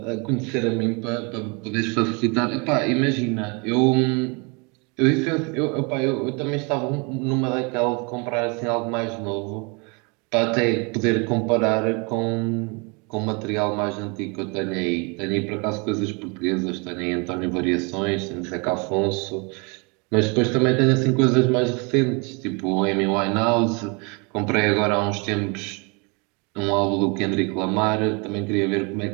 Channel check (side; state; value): left; quieter; 31.5 dB